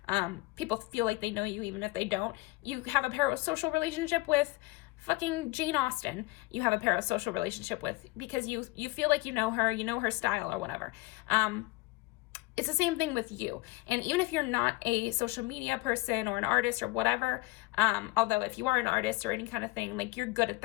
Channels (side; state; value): right; quieter; 21.5 dB